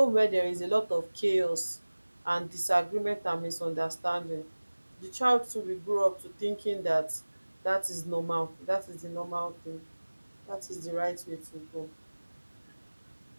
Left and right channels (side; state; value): both; inverted; correlation -1.00